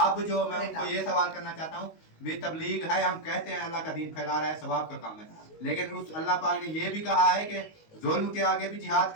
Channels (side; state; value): right; late; 19 ms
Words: जो मैं उनको ये सवाल करना चाहता हूँ, भी तबलीग है, हम कहते हैं अल्लाह का दीन फैला रहा है, सवाब का काम है, लेकिन उस अल्लाह पाक ने ये भी कहा है कि जुल्म के आगे भी जिहाद